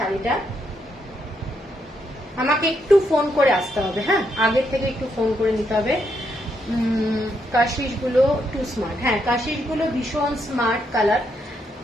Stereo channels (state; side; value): normal; both; correlation 0.78